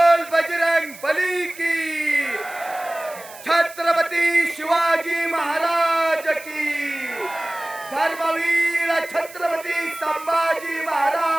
बजरंग बली की, छत्रपती शिवाजी महाराज की, धर्मवीर छत्रपती संभाजी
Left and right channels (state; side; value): noise; right; hiss, 18 dB below the sound